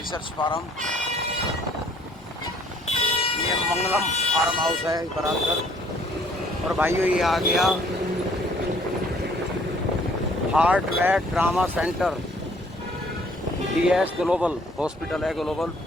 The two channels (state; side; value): normal; both; correlation 0.59